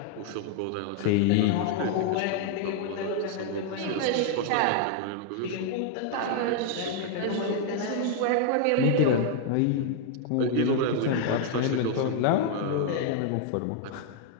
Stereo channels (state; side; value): different; both; correlation 0.00